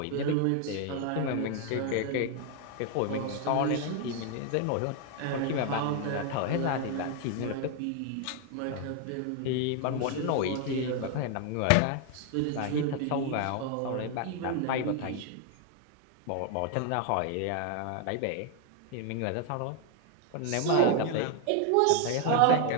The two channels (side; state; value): both; different; correlation 0.01